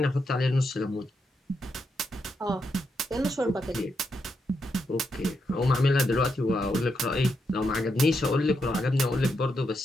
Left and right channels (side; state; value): both; normal; correlation 0.82